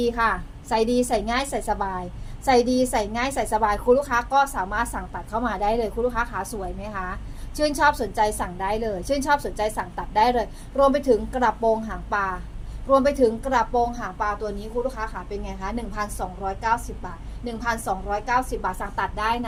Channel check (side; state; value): both; identical; correlation 1.00